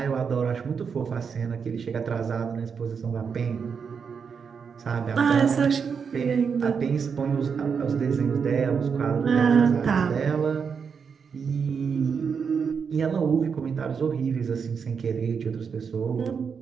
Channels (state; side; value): quieter; left; 6.2 dB